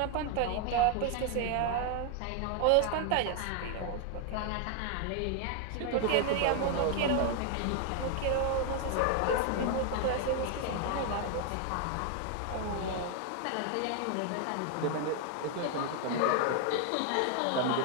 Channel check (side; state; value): both; different; correlation 0.00